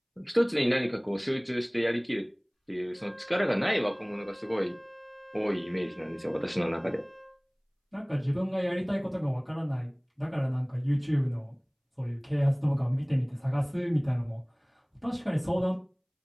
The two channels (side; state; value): both; identical; correlation 1.00